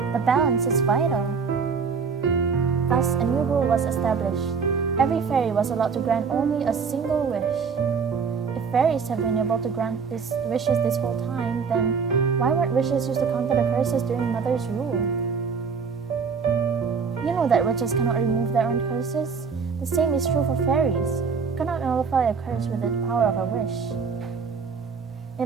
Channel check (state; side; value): quieter; left; 5.6 dB